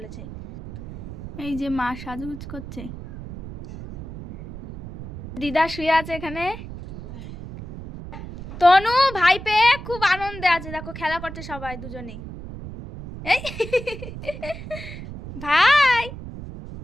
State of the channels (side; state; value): right; noise; rumble, 11 dB below the sound